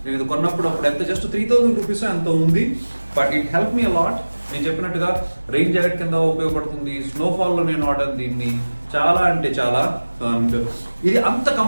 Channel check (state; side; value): inverted; both; correlation -1.00